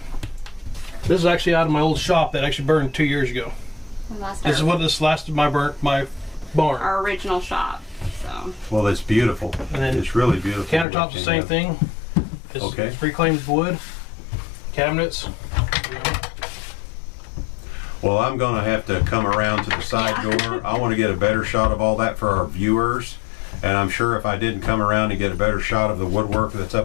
This is actually out of my old shop that actually burned 2 years ago. This is what this lasted my barn. Our original shop. So. Well, it's beautiful. And then it's really beautiful. Countertops the same thing. It's reclaimed wood. Cabinets. Well, I'm going to have to come around to the side door. I want to get a better shot of all that for our viewers. And I'm sure if I didn't come around and get a better shot of the woodwork that's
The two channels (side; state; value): right; drops out; at 10.9 s